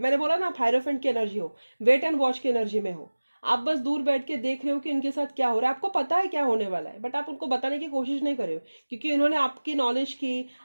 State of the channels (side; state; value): both; inverted; correlation -1.00